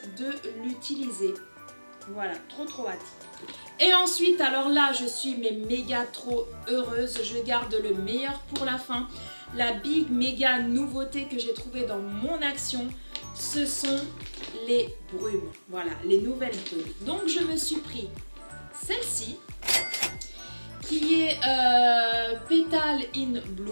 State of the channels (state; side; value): inverted; both; correlation -1.00